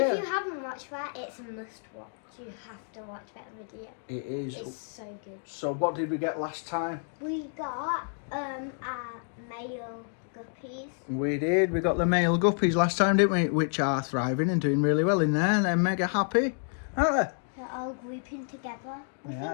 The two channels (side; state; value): right; silent; 58 dB below the other